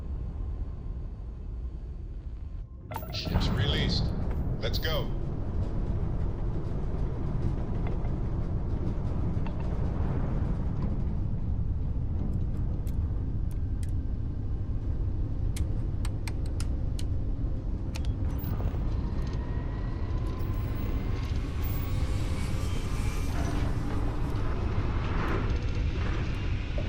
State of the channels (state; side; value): identical; both; correlation 1.00